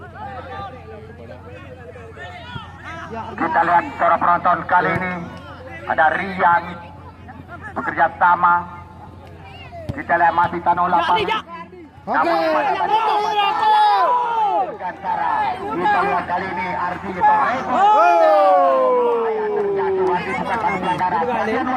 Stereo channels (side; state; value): both; identical; correlation 1.00